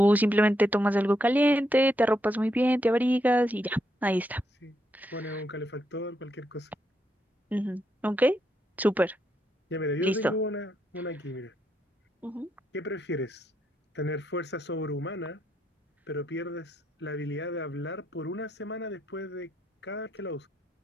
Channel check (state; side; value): normal; both; correlation 0.79